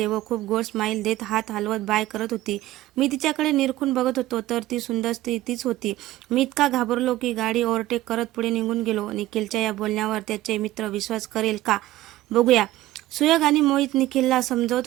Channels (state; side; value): quieter; left; 15.7 dB